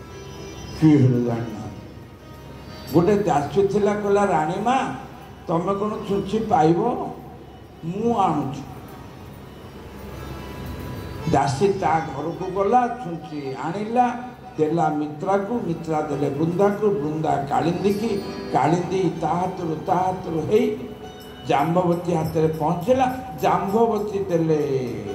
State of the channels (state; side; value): identical; both; correlation 1.00